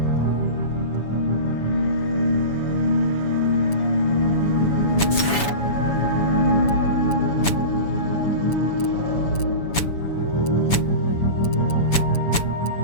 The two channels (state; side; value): late; right; 7.0 ms